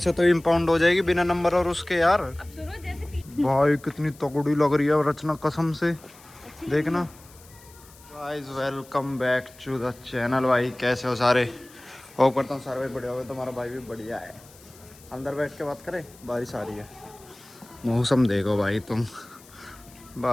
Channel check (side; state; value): left; noise; hiss, 24 dB below the sound